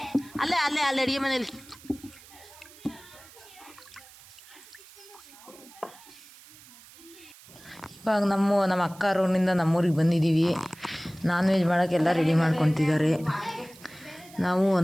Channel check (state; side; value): noise; right; hiss, 22 dB below the sound